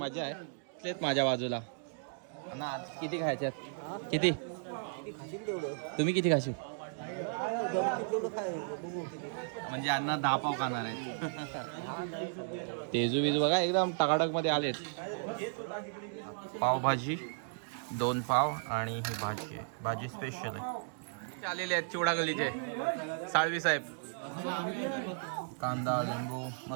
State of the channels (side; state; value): left; silent; digital silence